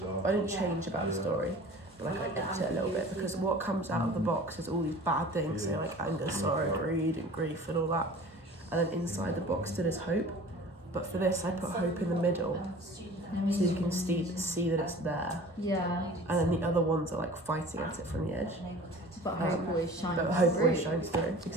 I didn't change about the story, like I edited it a little bit because what comes out of the box is all these bad things, so like anger, sorrow, greed, and grief, and all that. And then inside the box still is hope. But for this, I put hope in the middle, so you can see that it's there. Yeah. And then the other ones are like fighting at it from the edge. But hope always shines But hope through. always shines through,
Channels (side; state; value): both; normal; correlation 0.43